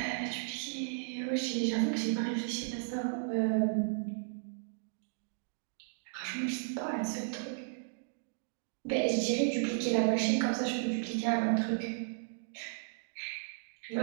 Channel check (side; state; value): left; silent; digital silence